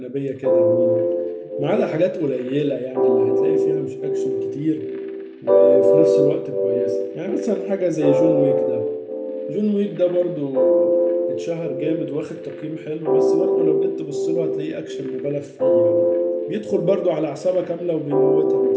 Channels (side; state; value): both; identical; correlation 1.00